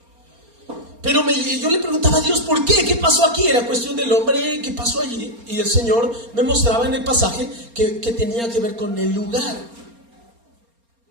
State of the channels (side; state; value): left; late; 4.3 ms